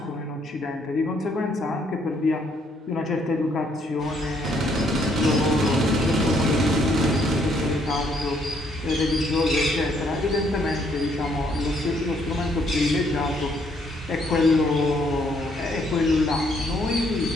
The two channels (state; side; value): normal; both; correlation 0.69